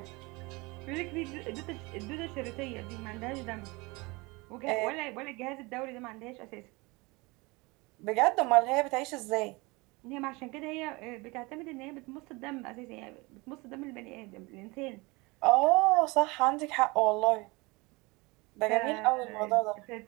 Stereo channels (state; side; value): quieter; left; 25.1 dB